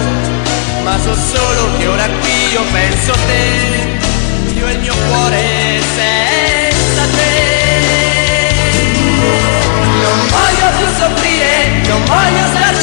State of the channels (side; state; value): right; silent; digital silence